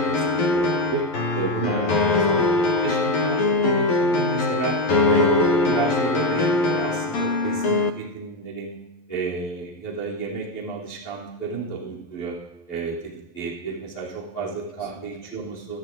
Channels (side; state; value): right; late; 11 ms